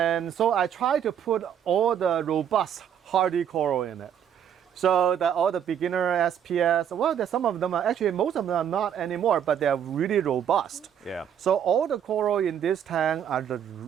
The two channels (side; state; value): left; quieter; 9.0 dB